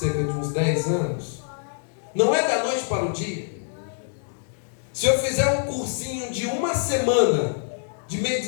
de uns 10 anos. Não é da noite para o dia. Se eu fizer um cursinho de uma semana de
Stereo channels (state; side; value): silent; right; digital silence